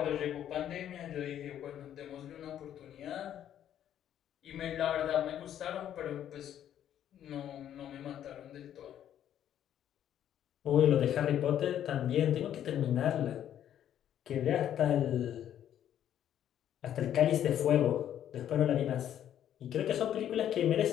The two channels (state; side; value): quieter; right; 10.6 dB